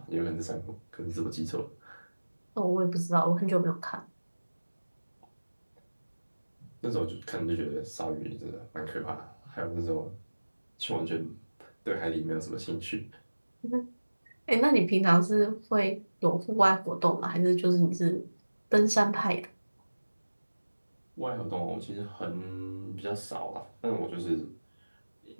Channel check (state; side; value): inverted; both; correlation -1.00